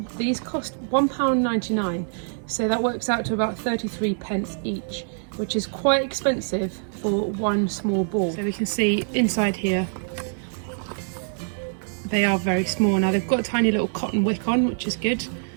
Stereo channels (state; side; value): silent; left; 62 dB below the other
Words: these cost £1.99, so that works out to about 33 pence each, which is quite expensive for one small ball. So we can see inside here they are very small. Now they've got a tiny little cotton wick on, which is good,